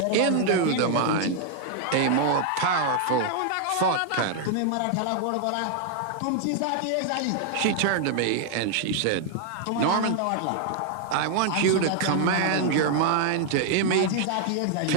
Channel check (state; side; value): different; both; correlation 0.00